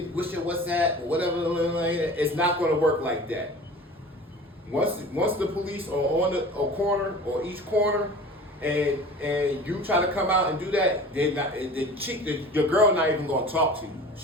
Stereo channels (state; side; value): normal; both; correlation 0.40